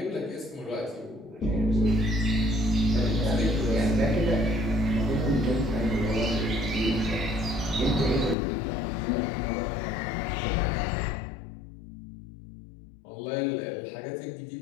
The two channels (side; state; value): right; drops out; at 8.3 s